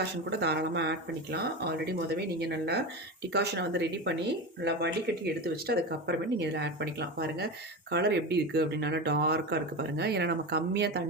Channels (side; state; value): both; normal; correlation 0.23